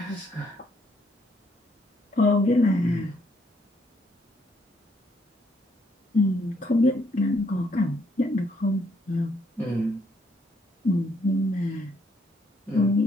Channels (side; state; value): both; normal; correlation 0.71